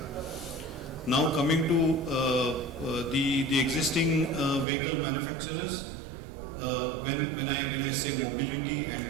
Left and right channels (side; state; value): left; drops out; at 4.7 s